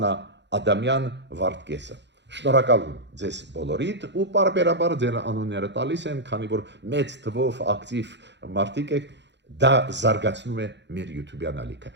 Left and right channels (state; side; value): late; left; 0.52 ms